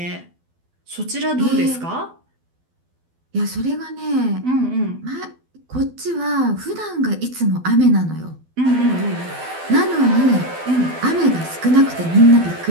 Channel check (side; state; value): left; late; 12 ms